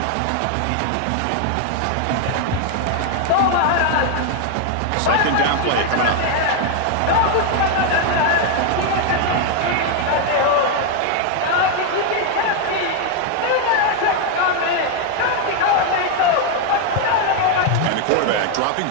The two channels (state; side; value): different; both; correlation 0.01